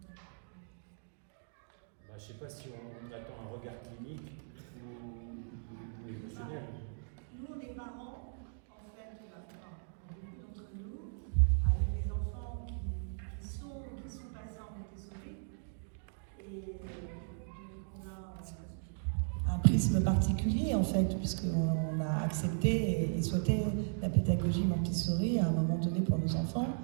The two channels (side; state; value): left; silent; digital silence